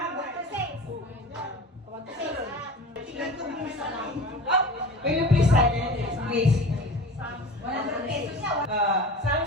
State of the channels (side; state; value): both; normal; correlation 0.36